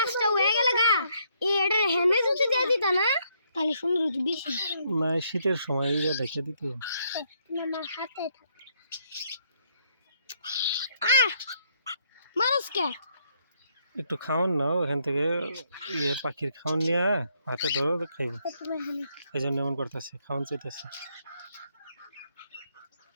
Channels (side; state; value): both; inverted; correlation -0.72